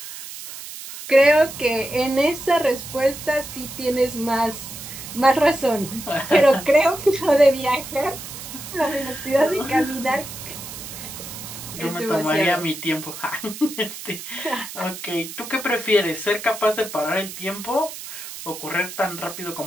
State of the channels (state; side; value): noise; right; hiss, 11 dB below the sound